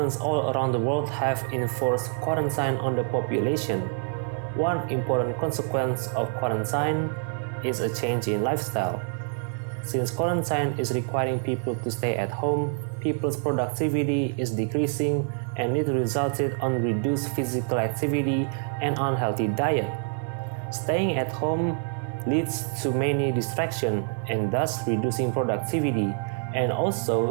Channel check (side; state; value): left; silent; 55 dB below the other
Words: all around the world have enforced quarantine on the population. One important consequence of quarantine is a change in lifestyle. Since quarantine is requiring people to stay at home, people's productivity is decreasing and it resulted on reduced physical activity and unhealthy diet. Staying at home leads to many distractions and thus reducing productivity. And